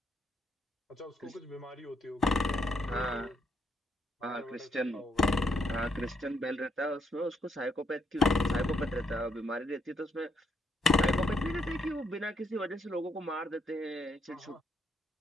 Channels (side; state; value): both; normal; correlation 0.74